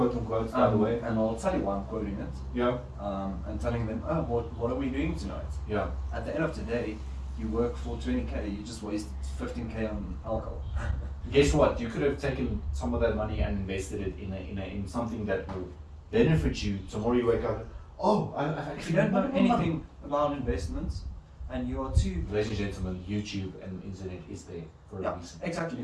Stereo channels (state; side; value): identical; both; correlation 1.00